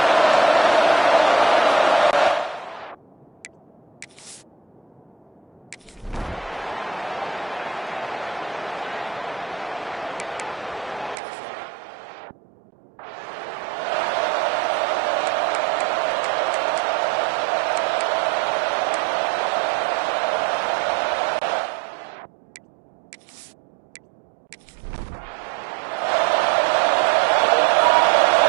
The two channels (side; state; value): left; drops out; at 11.2 s